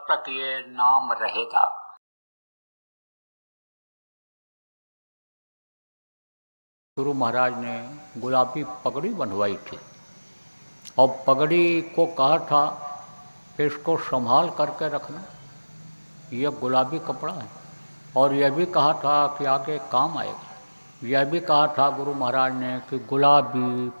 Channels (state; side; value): inverted; both; correlation -1.00